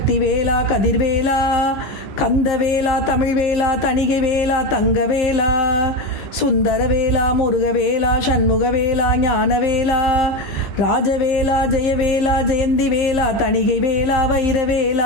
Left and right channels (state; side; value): late; right; 15 ms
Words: கதிர்வேலா கந்தவேலா தமிழ்வேலா தணிகைவேலா தங்கவேலா சுந்தரவேலா முருகவேலா சண்முகவேலா ஞானவேலா ராஜவேலா ஜெயவேலா ஜெயந்திவேலா தணிகைவேலா